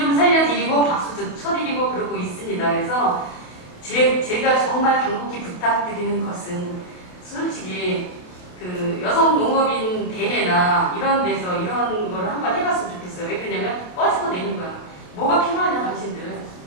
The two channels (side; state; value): right; late; 28 ms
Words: 살려드리고 박수도 쳐드리고 그러고 있습니다. 그래서 제가 정말 간곡히 부탁드리는 것은 솔직히 여성 농업인 대회나 이런 데서 이런 거를 한번 해봤으면 좋겠어요. 왜 그러냐면 꺼지고 내는 거야. 뭐가 필요하냐 당신들.